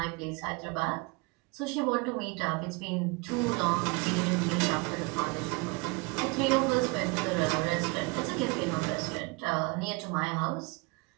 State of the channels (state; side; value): quieter; left; 27.5 dB